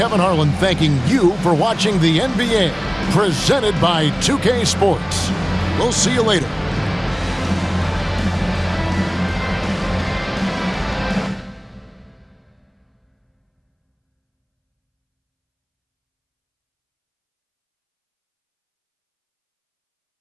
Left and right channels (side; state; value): both; identical; correlation 1.00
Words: Harlan thanking you for watching the NBA, presented by 2K Sports. We'll see you later.